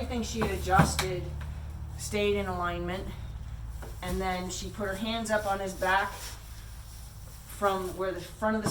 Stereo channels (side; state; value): both; identical; correlation 1.00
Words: she had adjusted stayed in alignment. And then she put her hands up on his back from where the front of the